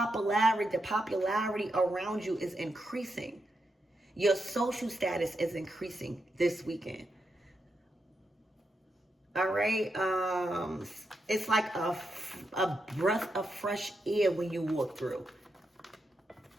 around you is increasing. Your social status is increasing this weekend. All right. It's like a breath of fresh air when you walk through.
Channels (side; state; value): both; normal; correlation 0.85